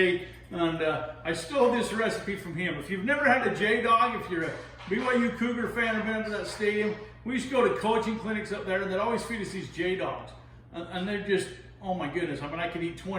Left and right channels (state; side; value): identical; both; correlation 1.00